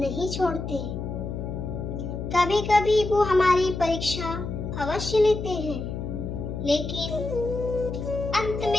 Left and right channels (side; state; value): left; noise; hum, 5 dB below the sound